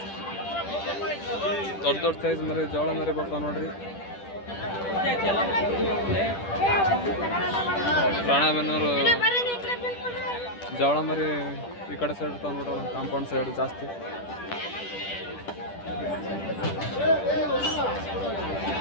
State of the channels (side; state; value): right; late; 10 ms